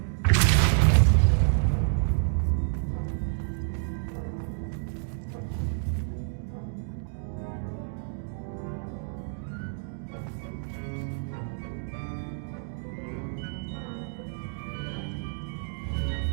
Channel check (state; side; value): silent; left; digital silence